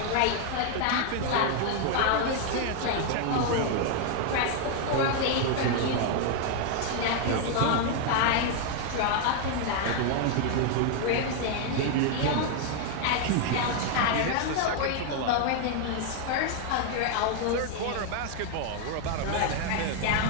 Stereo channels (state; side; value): different; both; correlation 0.00